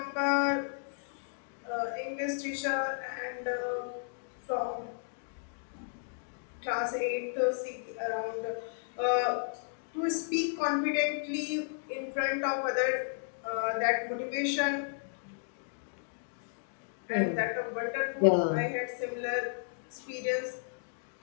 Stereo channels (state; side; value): silent; right; digital silence